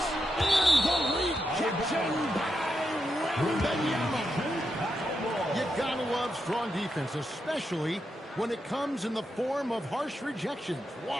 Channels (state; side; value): normal; both; correlation 0.85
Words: And the rejection by Wembanyama. You gotta love strong defense, especially when it comes in the form of harsh rejections.